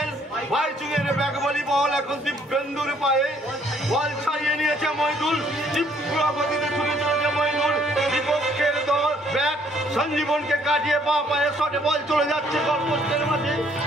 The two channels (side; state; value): both; normal; correlation 0.64